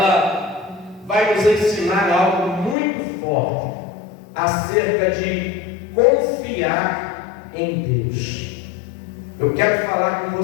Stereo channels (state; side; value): drops out; right; at 2.8 s